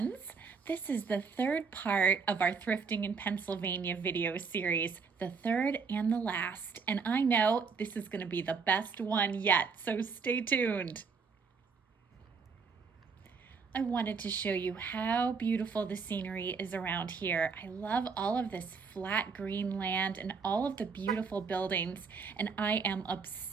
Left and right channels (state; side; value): quieter; left; 5.2 dB